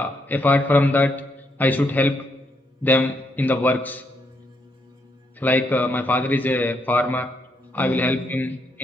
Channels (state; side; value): normal; both; correlation 0.76